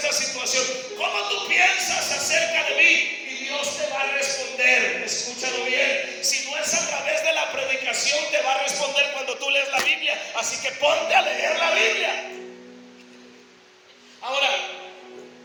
situación? ¿Cómo tú piensas acerca de mí? Y Dios te va a responder. Escúchalo bien. Si no es a través de la predicación, te va a responder cuando tú lees la Biblia. Así que ponte a leer la Biblia. Ahora,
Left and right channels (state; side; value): identical; both; correlation 1.00